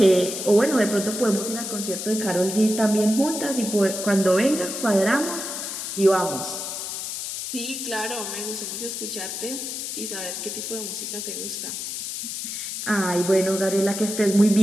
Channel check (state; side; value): noise; left; hiss, 5 dB below the sound